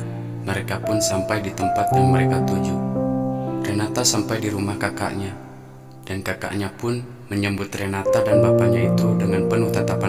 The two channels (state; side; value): identical; both; correlation 1.00